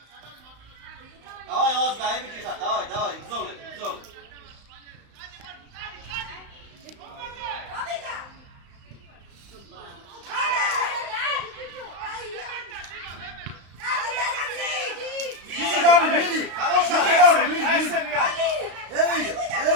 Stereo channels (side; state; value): left; late; 35 ms